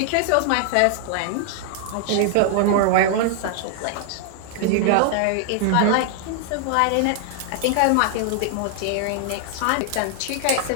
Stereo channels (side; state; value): both; different; correlation 0.00